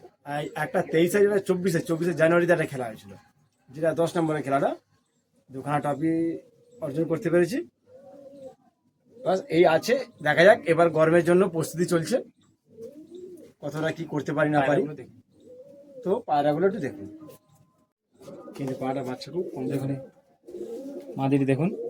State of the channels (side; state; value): both; identical; correlation 1.00